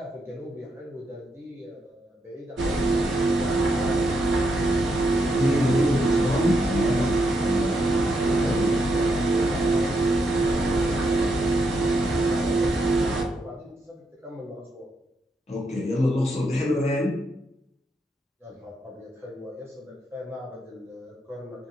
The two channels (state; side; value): normal; both; correlation 0.80